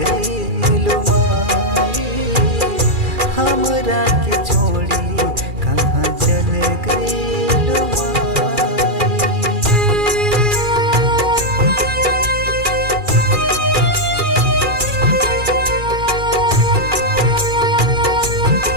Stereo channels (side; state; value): left; late; 2.4 ms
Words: गई लो माई, हमरा के छोड़ी कहाँ चले गई लो माई।